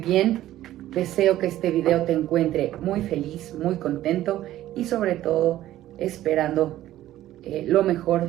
bien. Deseo que este video te encuentre muy feliz, muy contento y sobre todo esperando lo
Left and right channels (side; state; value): left; quieter; 13.9 dB